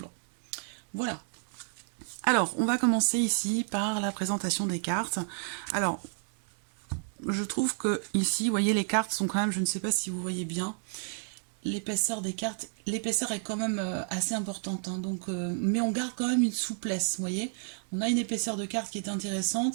Voilà. Alors, on va commencer ici par la présentation des cartes. Alors, je trouve que ici, vous voyez, les cartes sont quand même, je ne sais pas si vous voyez bien, l'épaisseur des cartes, l'épaisseur est quand même assez importante, hein, donc, mais on garde quand même une souplesse, vous voyez. On a une épaisseur de carte qui est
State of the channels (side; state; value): left; silent; 57 dB below the other